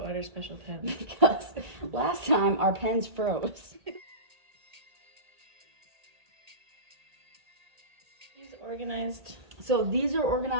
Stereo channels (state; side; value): late; left; 1.8 ms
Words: order special pens? Because last time our pens froze. These organized. So these are